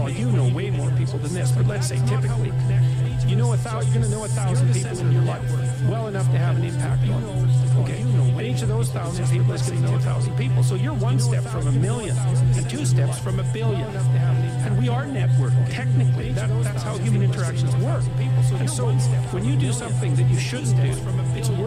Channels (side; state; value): both; identical; correlation 1.00